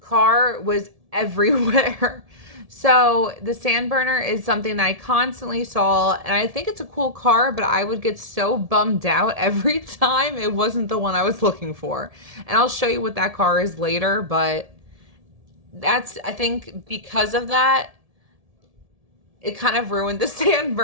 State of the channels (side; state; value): left; late; 1.7 ms